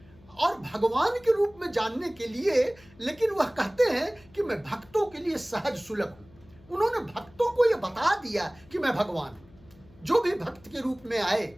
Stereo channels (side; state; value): left; noise; hum, 26 dB below the sound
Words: और भगवान के रूप में जानने के लिए, लेकिन वह कहते हैं कि मैं भक्तों के लिए सहज सुलभ हूं। उन्होंने भक्तों को यह बता दिया कि मैं भगवान हूं। जो भी भक्त के रूप में आए,